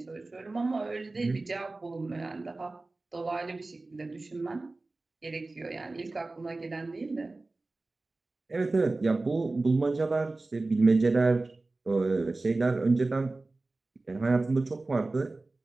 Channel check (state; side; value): quieter; left; 3.2 dB